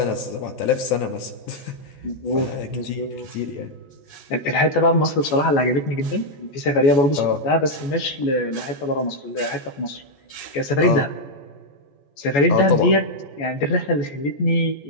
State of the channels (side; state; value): right; late; 14 ms